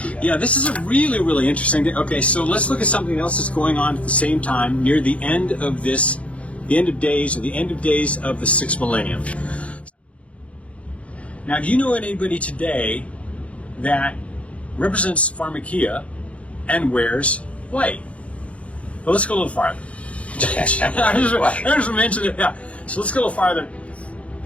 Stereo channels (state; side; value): late; right; 0.063 ms